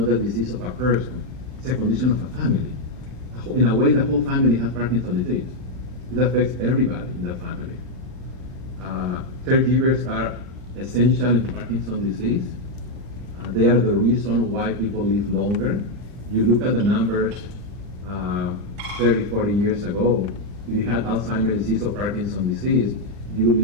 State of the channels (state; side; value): late; left; 39 ms